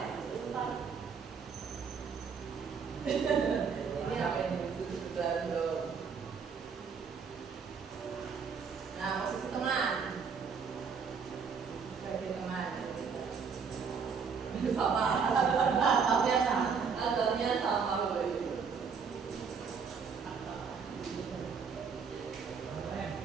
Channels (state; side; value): quieter; left; 5.9 dB